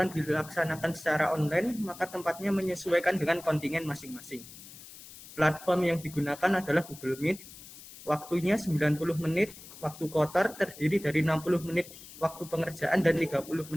dilaksanakan secara online, maka tempatnya menyesuaikan dengan kontingen masing-masing. Platform yang digunakan adalah Google Meet. Waktunya 90 menit, waktu kotor terdiri dari 60 menit waktu pengerjaan dan 30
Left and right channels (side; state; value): left; noise; hiss, 17 dB below the sound